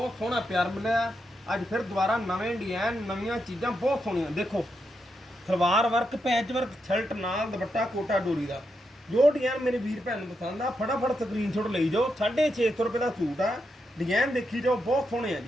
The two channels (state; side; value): normal; both; correlation 0.84